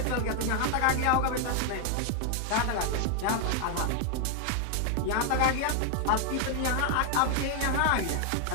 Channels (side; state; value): both; different; correlation 0.00